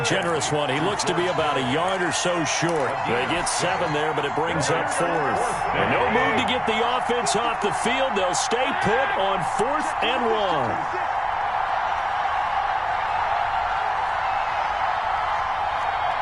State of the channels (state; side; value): identical; both; correlation 1.00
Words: generous one. He looks to be about a yard or so short. They get 7 there, but it brings up 4th. And no move to get the offense off the field. They'll stay put on 4th and 1.